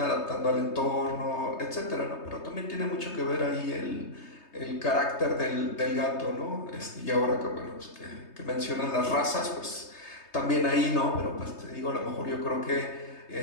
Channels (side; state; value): right; late; 3.3 ms